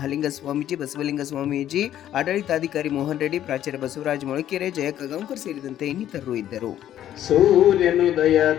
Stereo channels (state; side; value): quieter; right; 11.6 dB